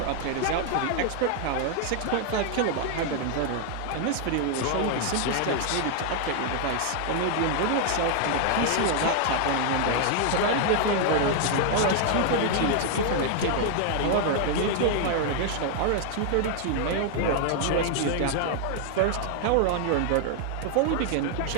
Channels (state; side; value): different; both; correlation 0.00